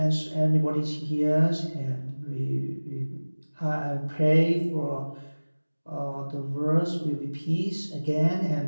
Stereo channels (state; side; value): inverted; both; correlation -1.00